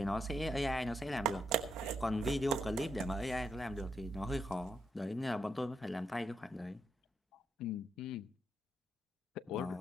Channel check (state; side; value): normal; both; correlation 0.80